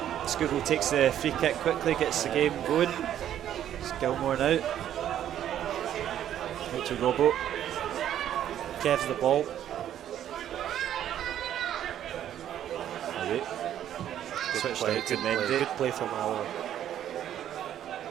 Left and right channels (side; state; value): left; quieter; 10.9 dB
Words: Skugel takes the free kick quickly, gets the game going. It's Gilmore now. Out to Robbo. Kev's the ball. Switched out to Mendy. Good play from Alloa.